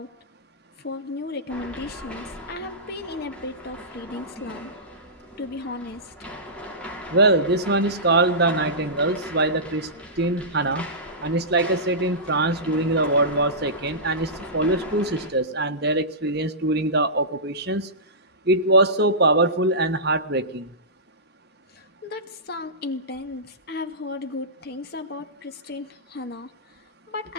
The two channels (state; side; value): normal; both; correlation -0.19